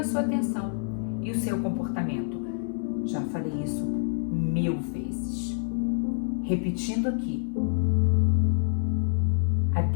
sua atenção e o seu comportamento. Já falei isso 1000 vezes. Repetindo aqui, a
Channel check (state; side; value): silent; right; 60 dB below the other